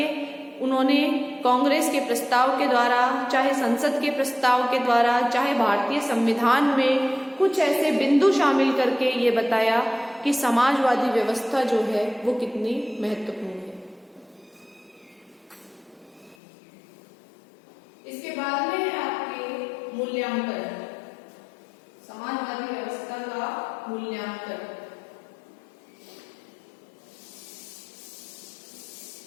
उन्होंने कांग्रेस के प्रस्ताव के द्वारा, चाहे संसद के प्रस्ताव के द्वारा, चाहे भारतीय संविधान में कुछ ऐसे बिंदु शामिल करके ये बताया कि समाजवादी व्यवस्था जो है वो कितनी महत्वपूर्ण है। इसके बाद में है आपके मूल्यांकन, समाजवादी व्यवस्था का मूल्यांकन।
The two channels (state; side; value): drops out; right; at 16.4 s